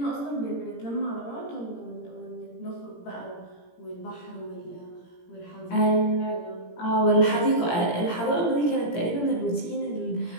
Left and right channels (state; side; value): late; right; 17 ms